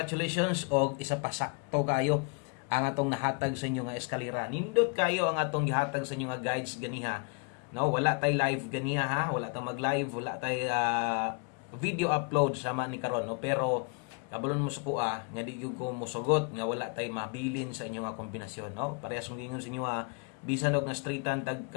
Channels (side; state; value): right; quieter; 34.8 dB